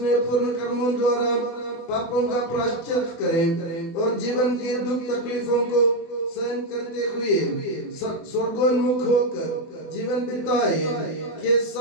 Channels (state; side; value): late; right; 24 ms